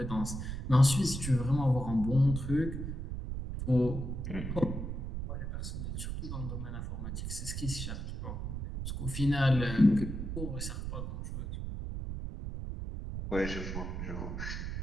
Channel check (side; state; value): right; noise; rumble, 5 dB below the sound